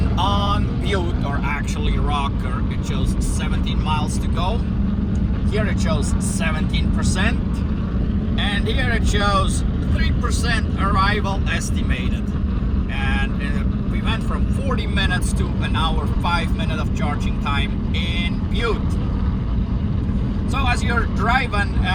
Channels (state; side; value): identical; both; correlation 1.00